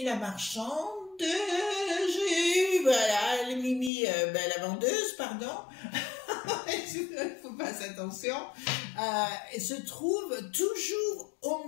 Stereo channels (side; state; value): right; drops out; at 3.9 s